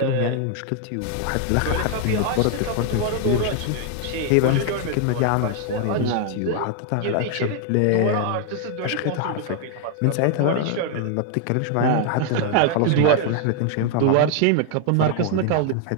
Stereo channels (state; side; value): different; both; correlation 0.00